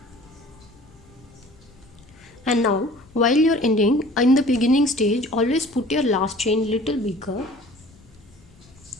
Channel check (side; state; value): left; noise; rumble, 26 dB below the sound